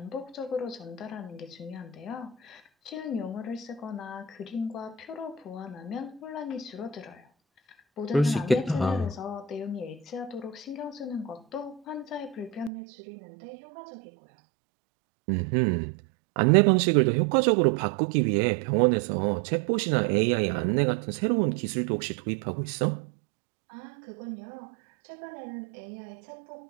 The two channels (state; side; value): drops out; left; at 12.7 s